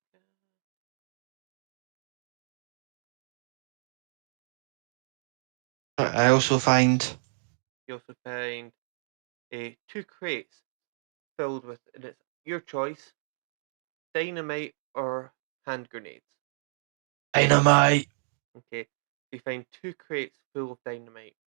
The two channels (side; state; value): left; silent; digital silence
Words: I also find. You also find 2 crates filled with, and it's your choice, dynamite or hand grenades. Dynamite. Okay, you find 2 crates full of dynamite.